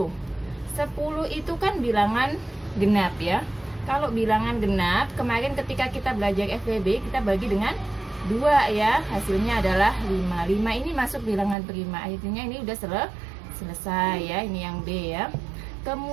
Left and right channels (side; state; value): left; drops out; at 11.6 s